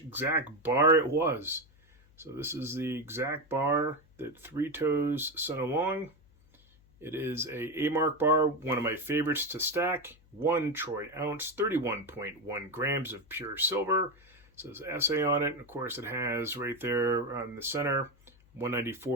bar it was. So this is the exact bar that ThreeToes sent along. It is a mark bar, one of my favorites to stack. 1 troy ounce, 31.1 grams of pure silver. It says SA on it, and of course it has right there on the center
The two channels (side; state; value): left; noise; hum, 29 dB below the sound